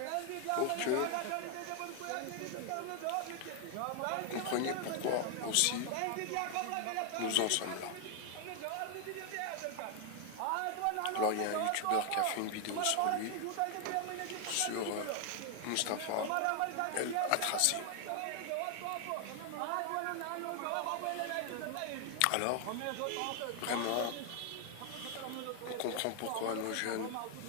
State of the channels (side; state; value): both; different; correlation 0.00